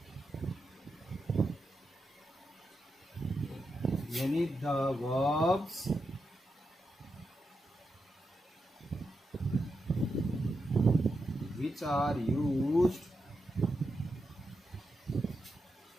यानी the verbs which are used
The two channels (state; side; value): normal; both; correlation 0.86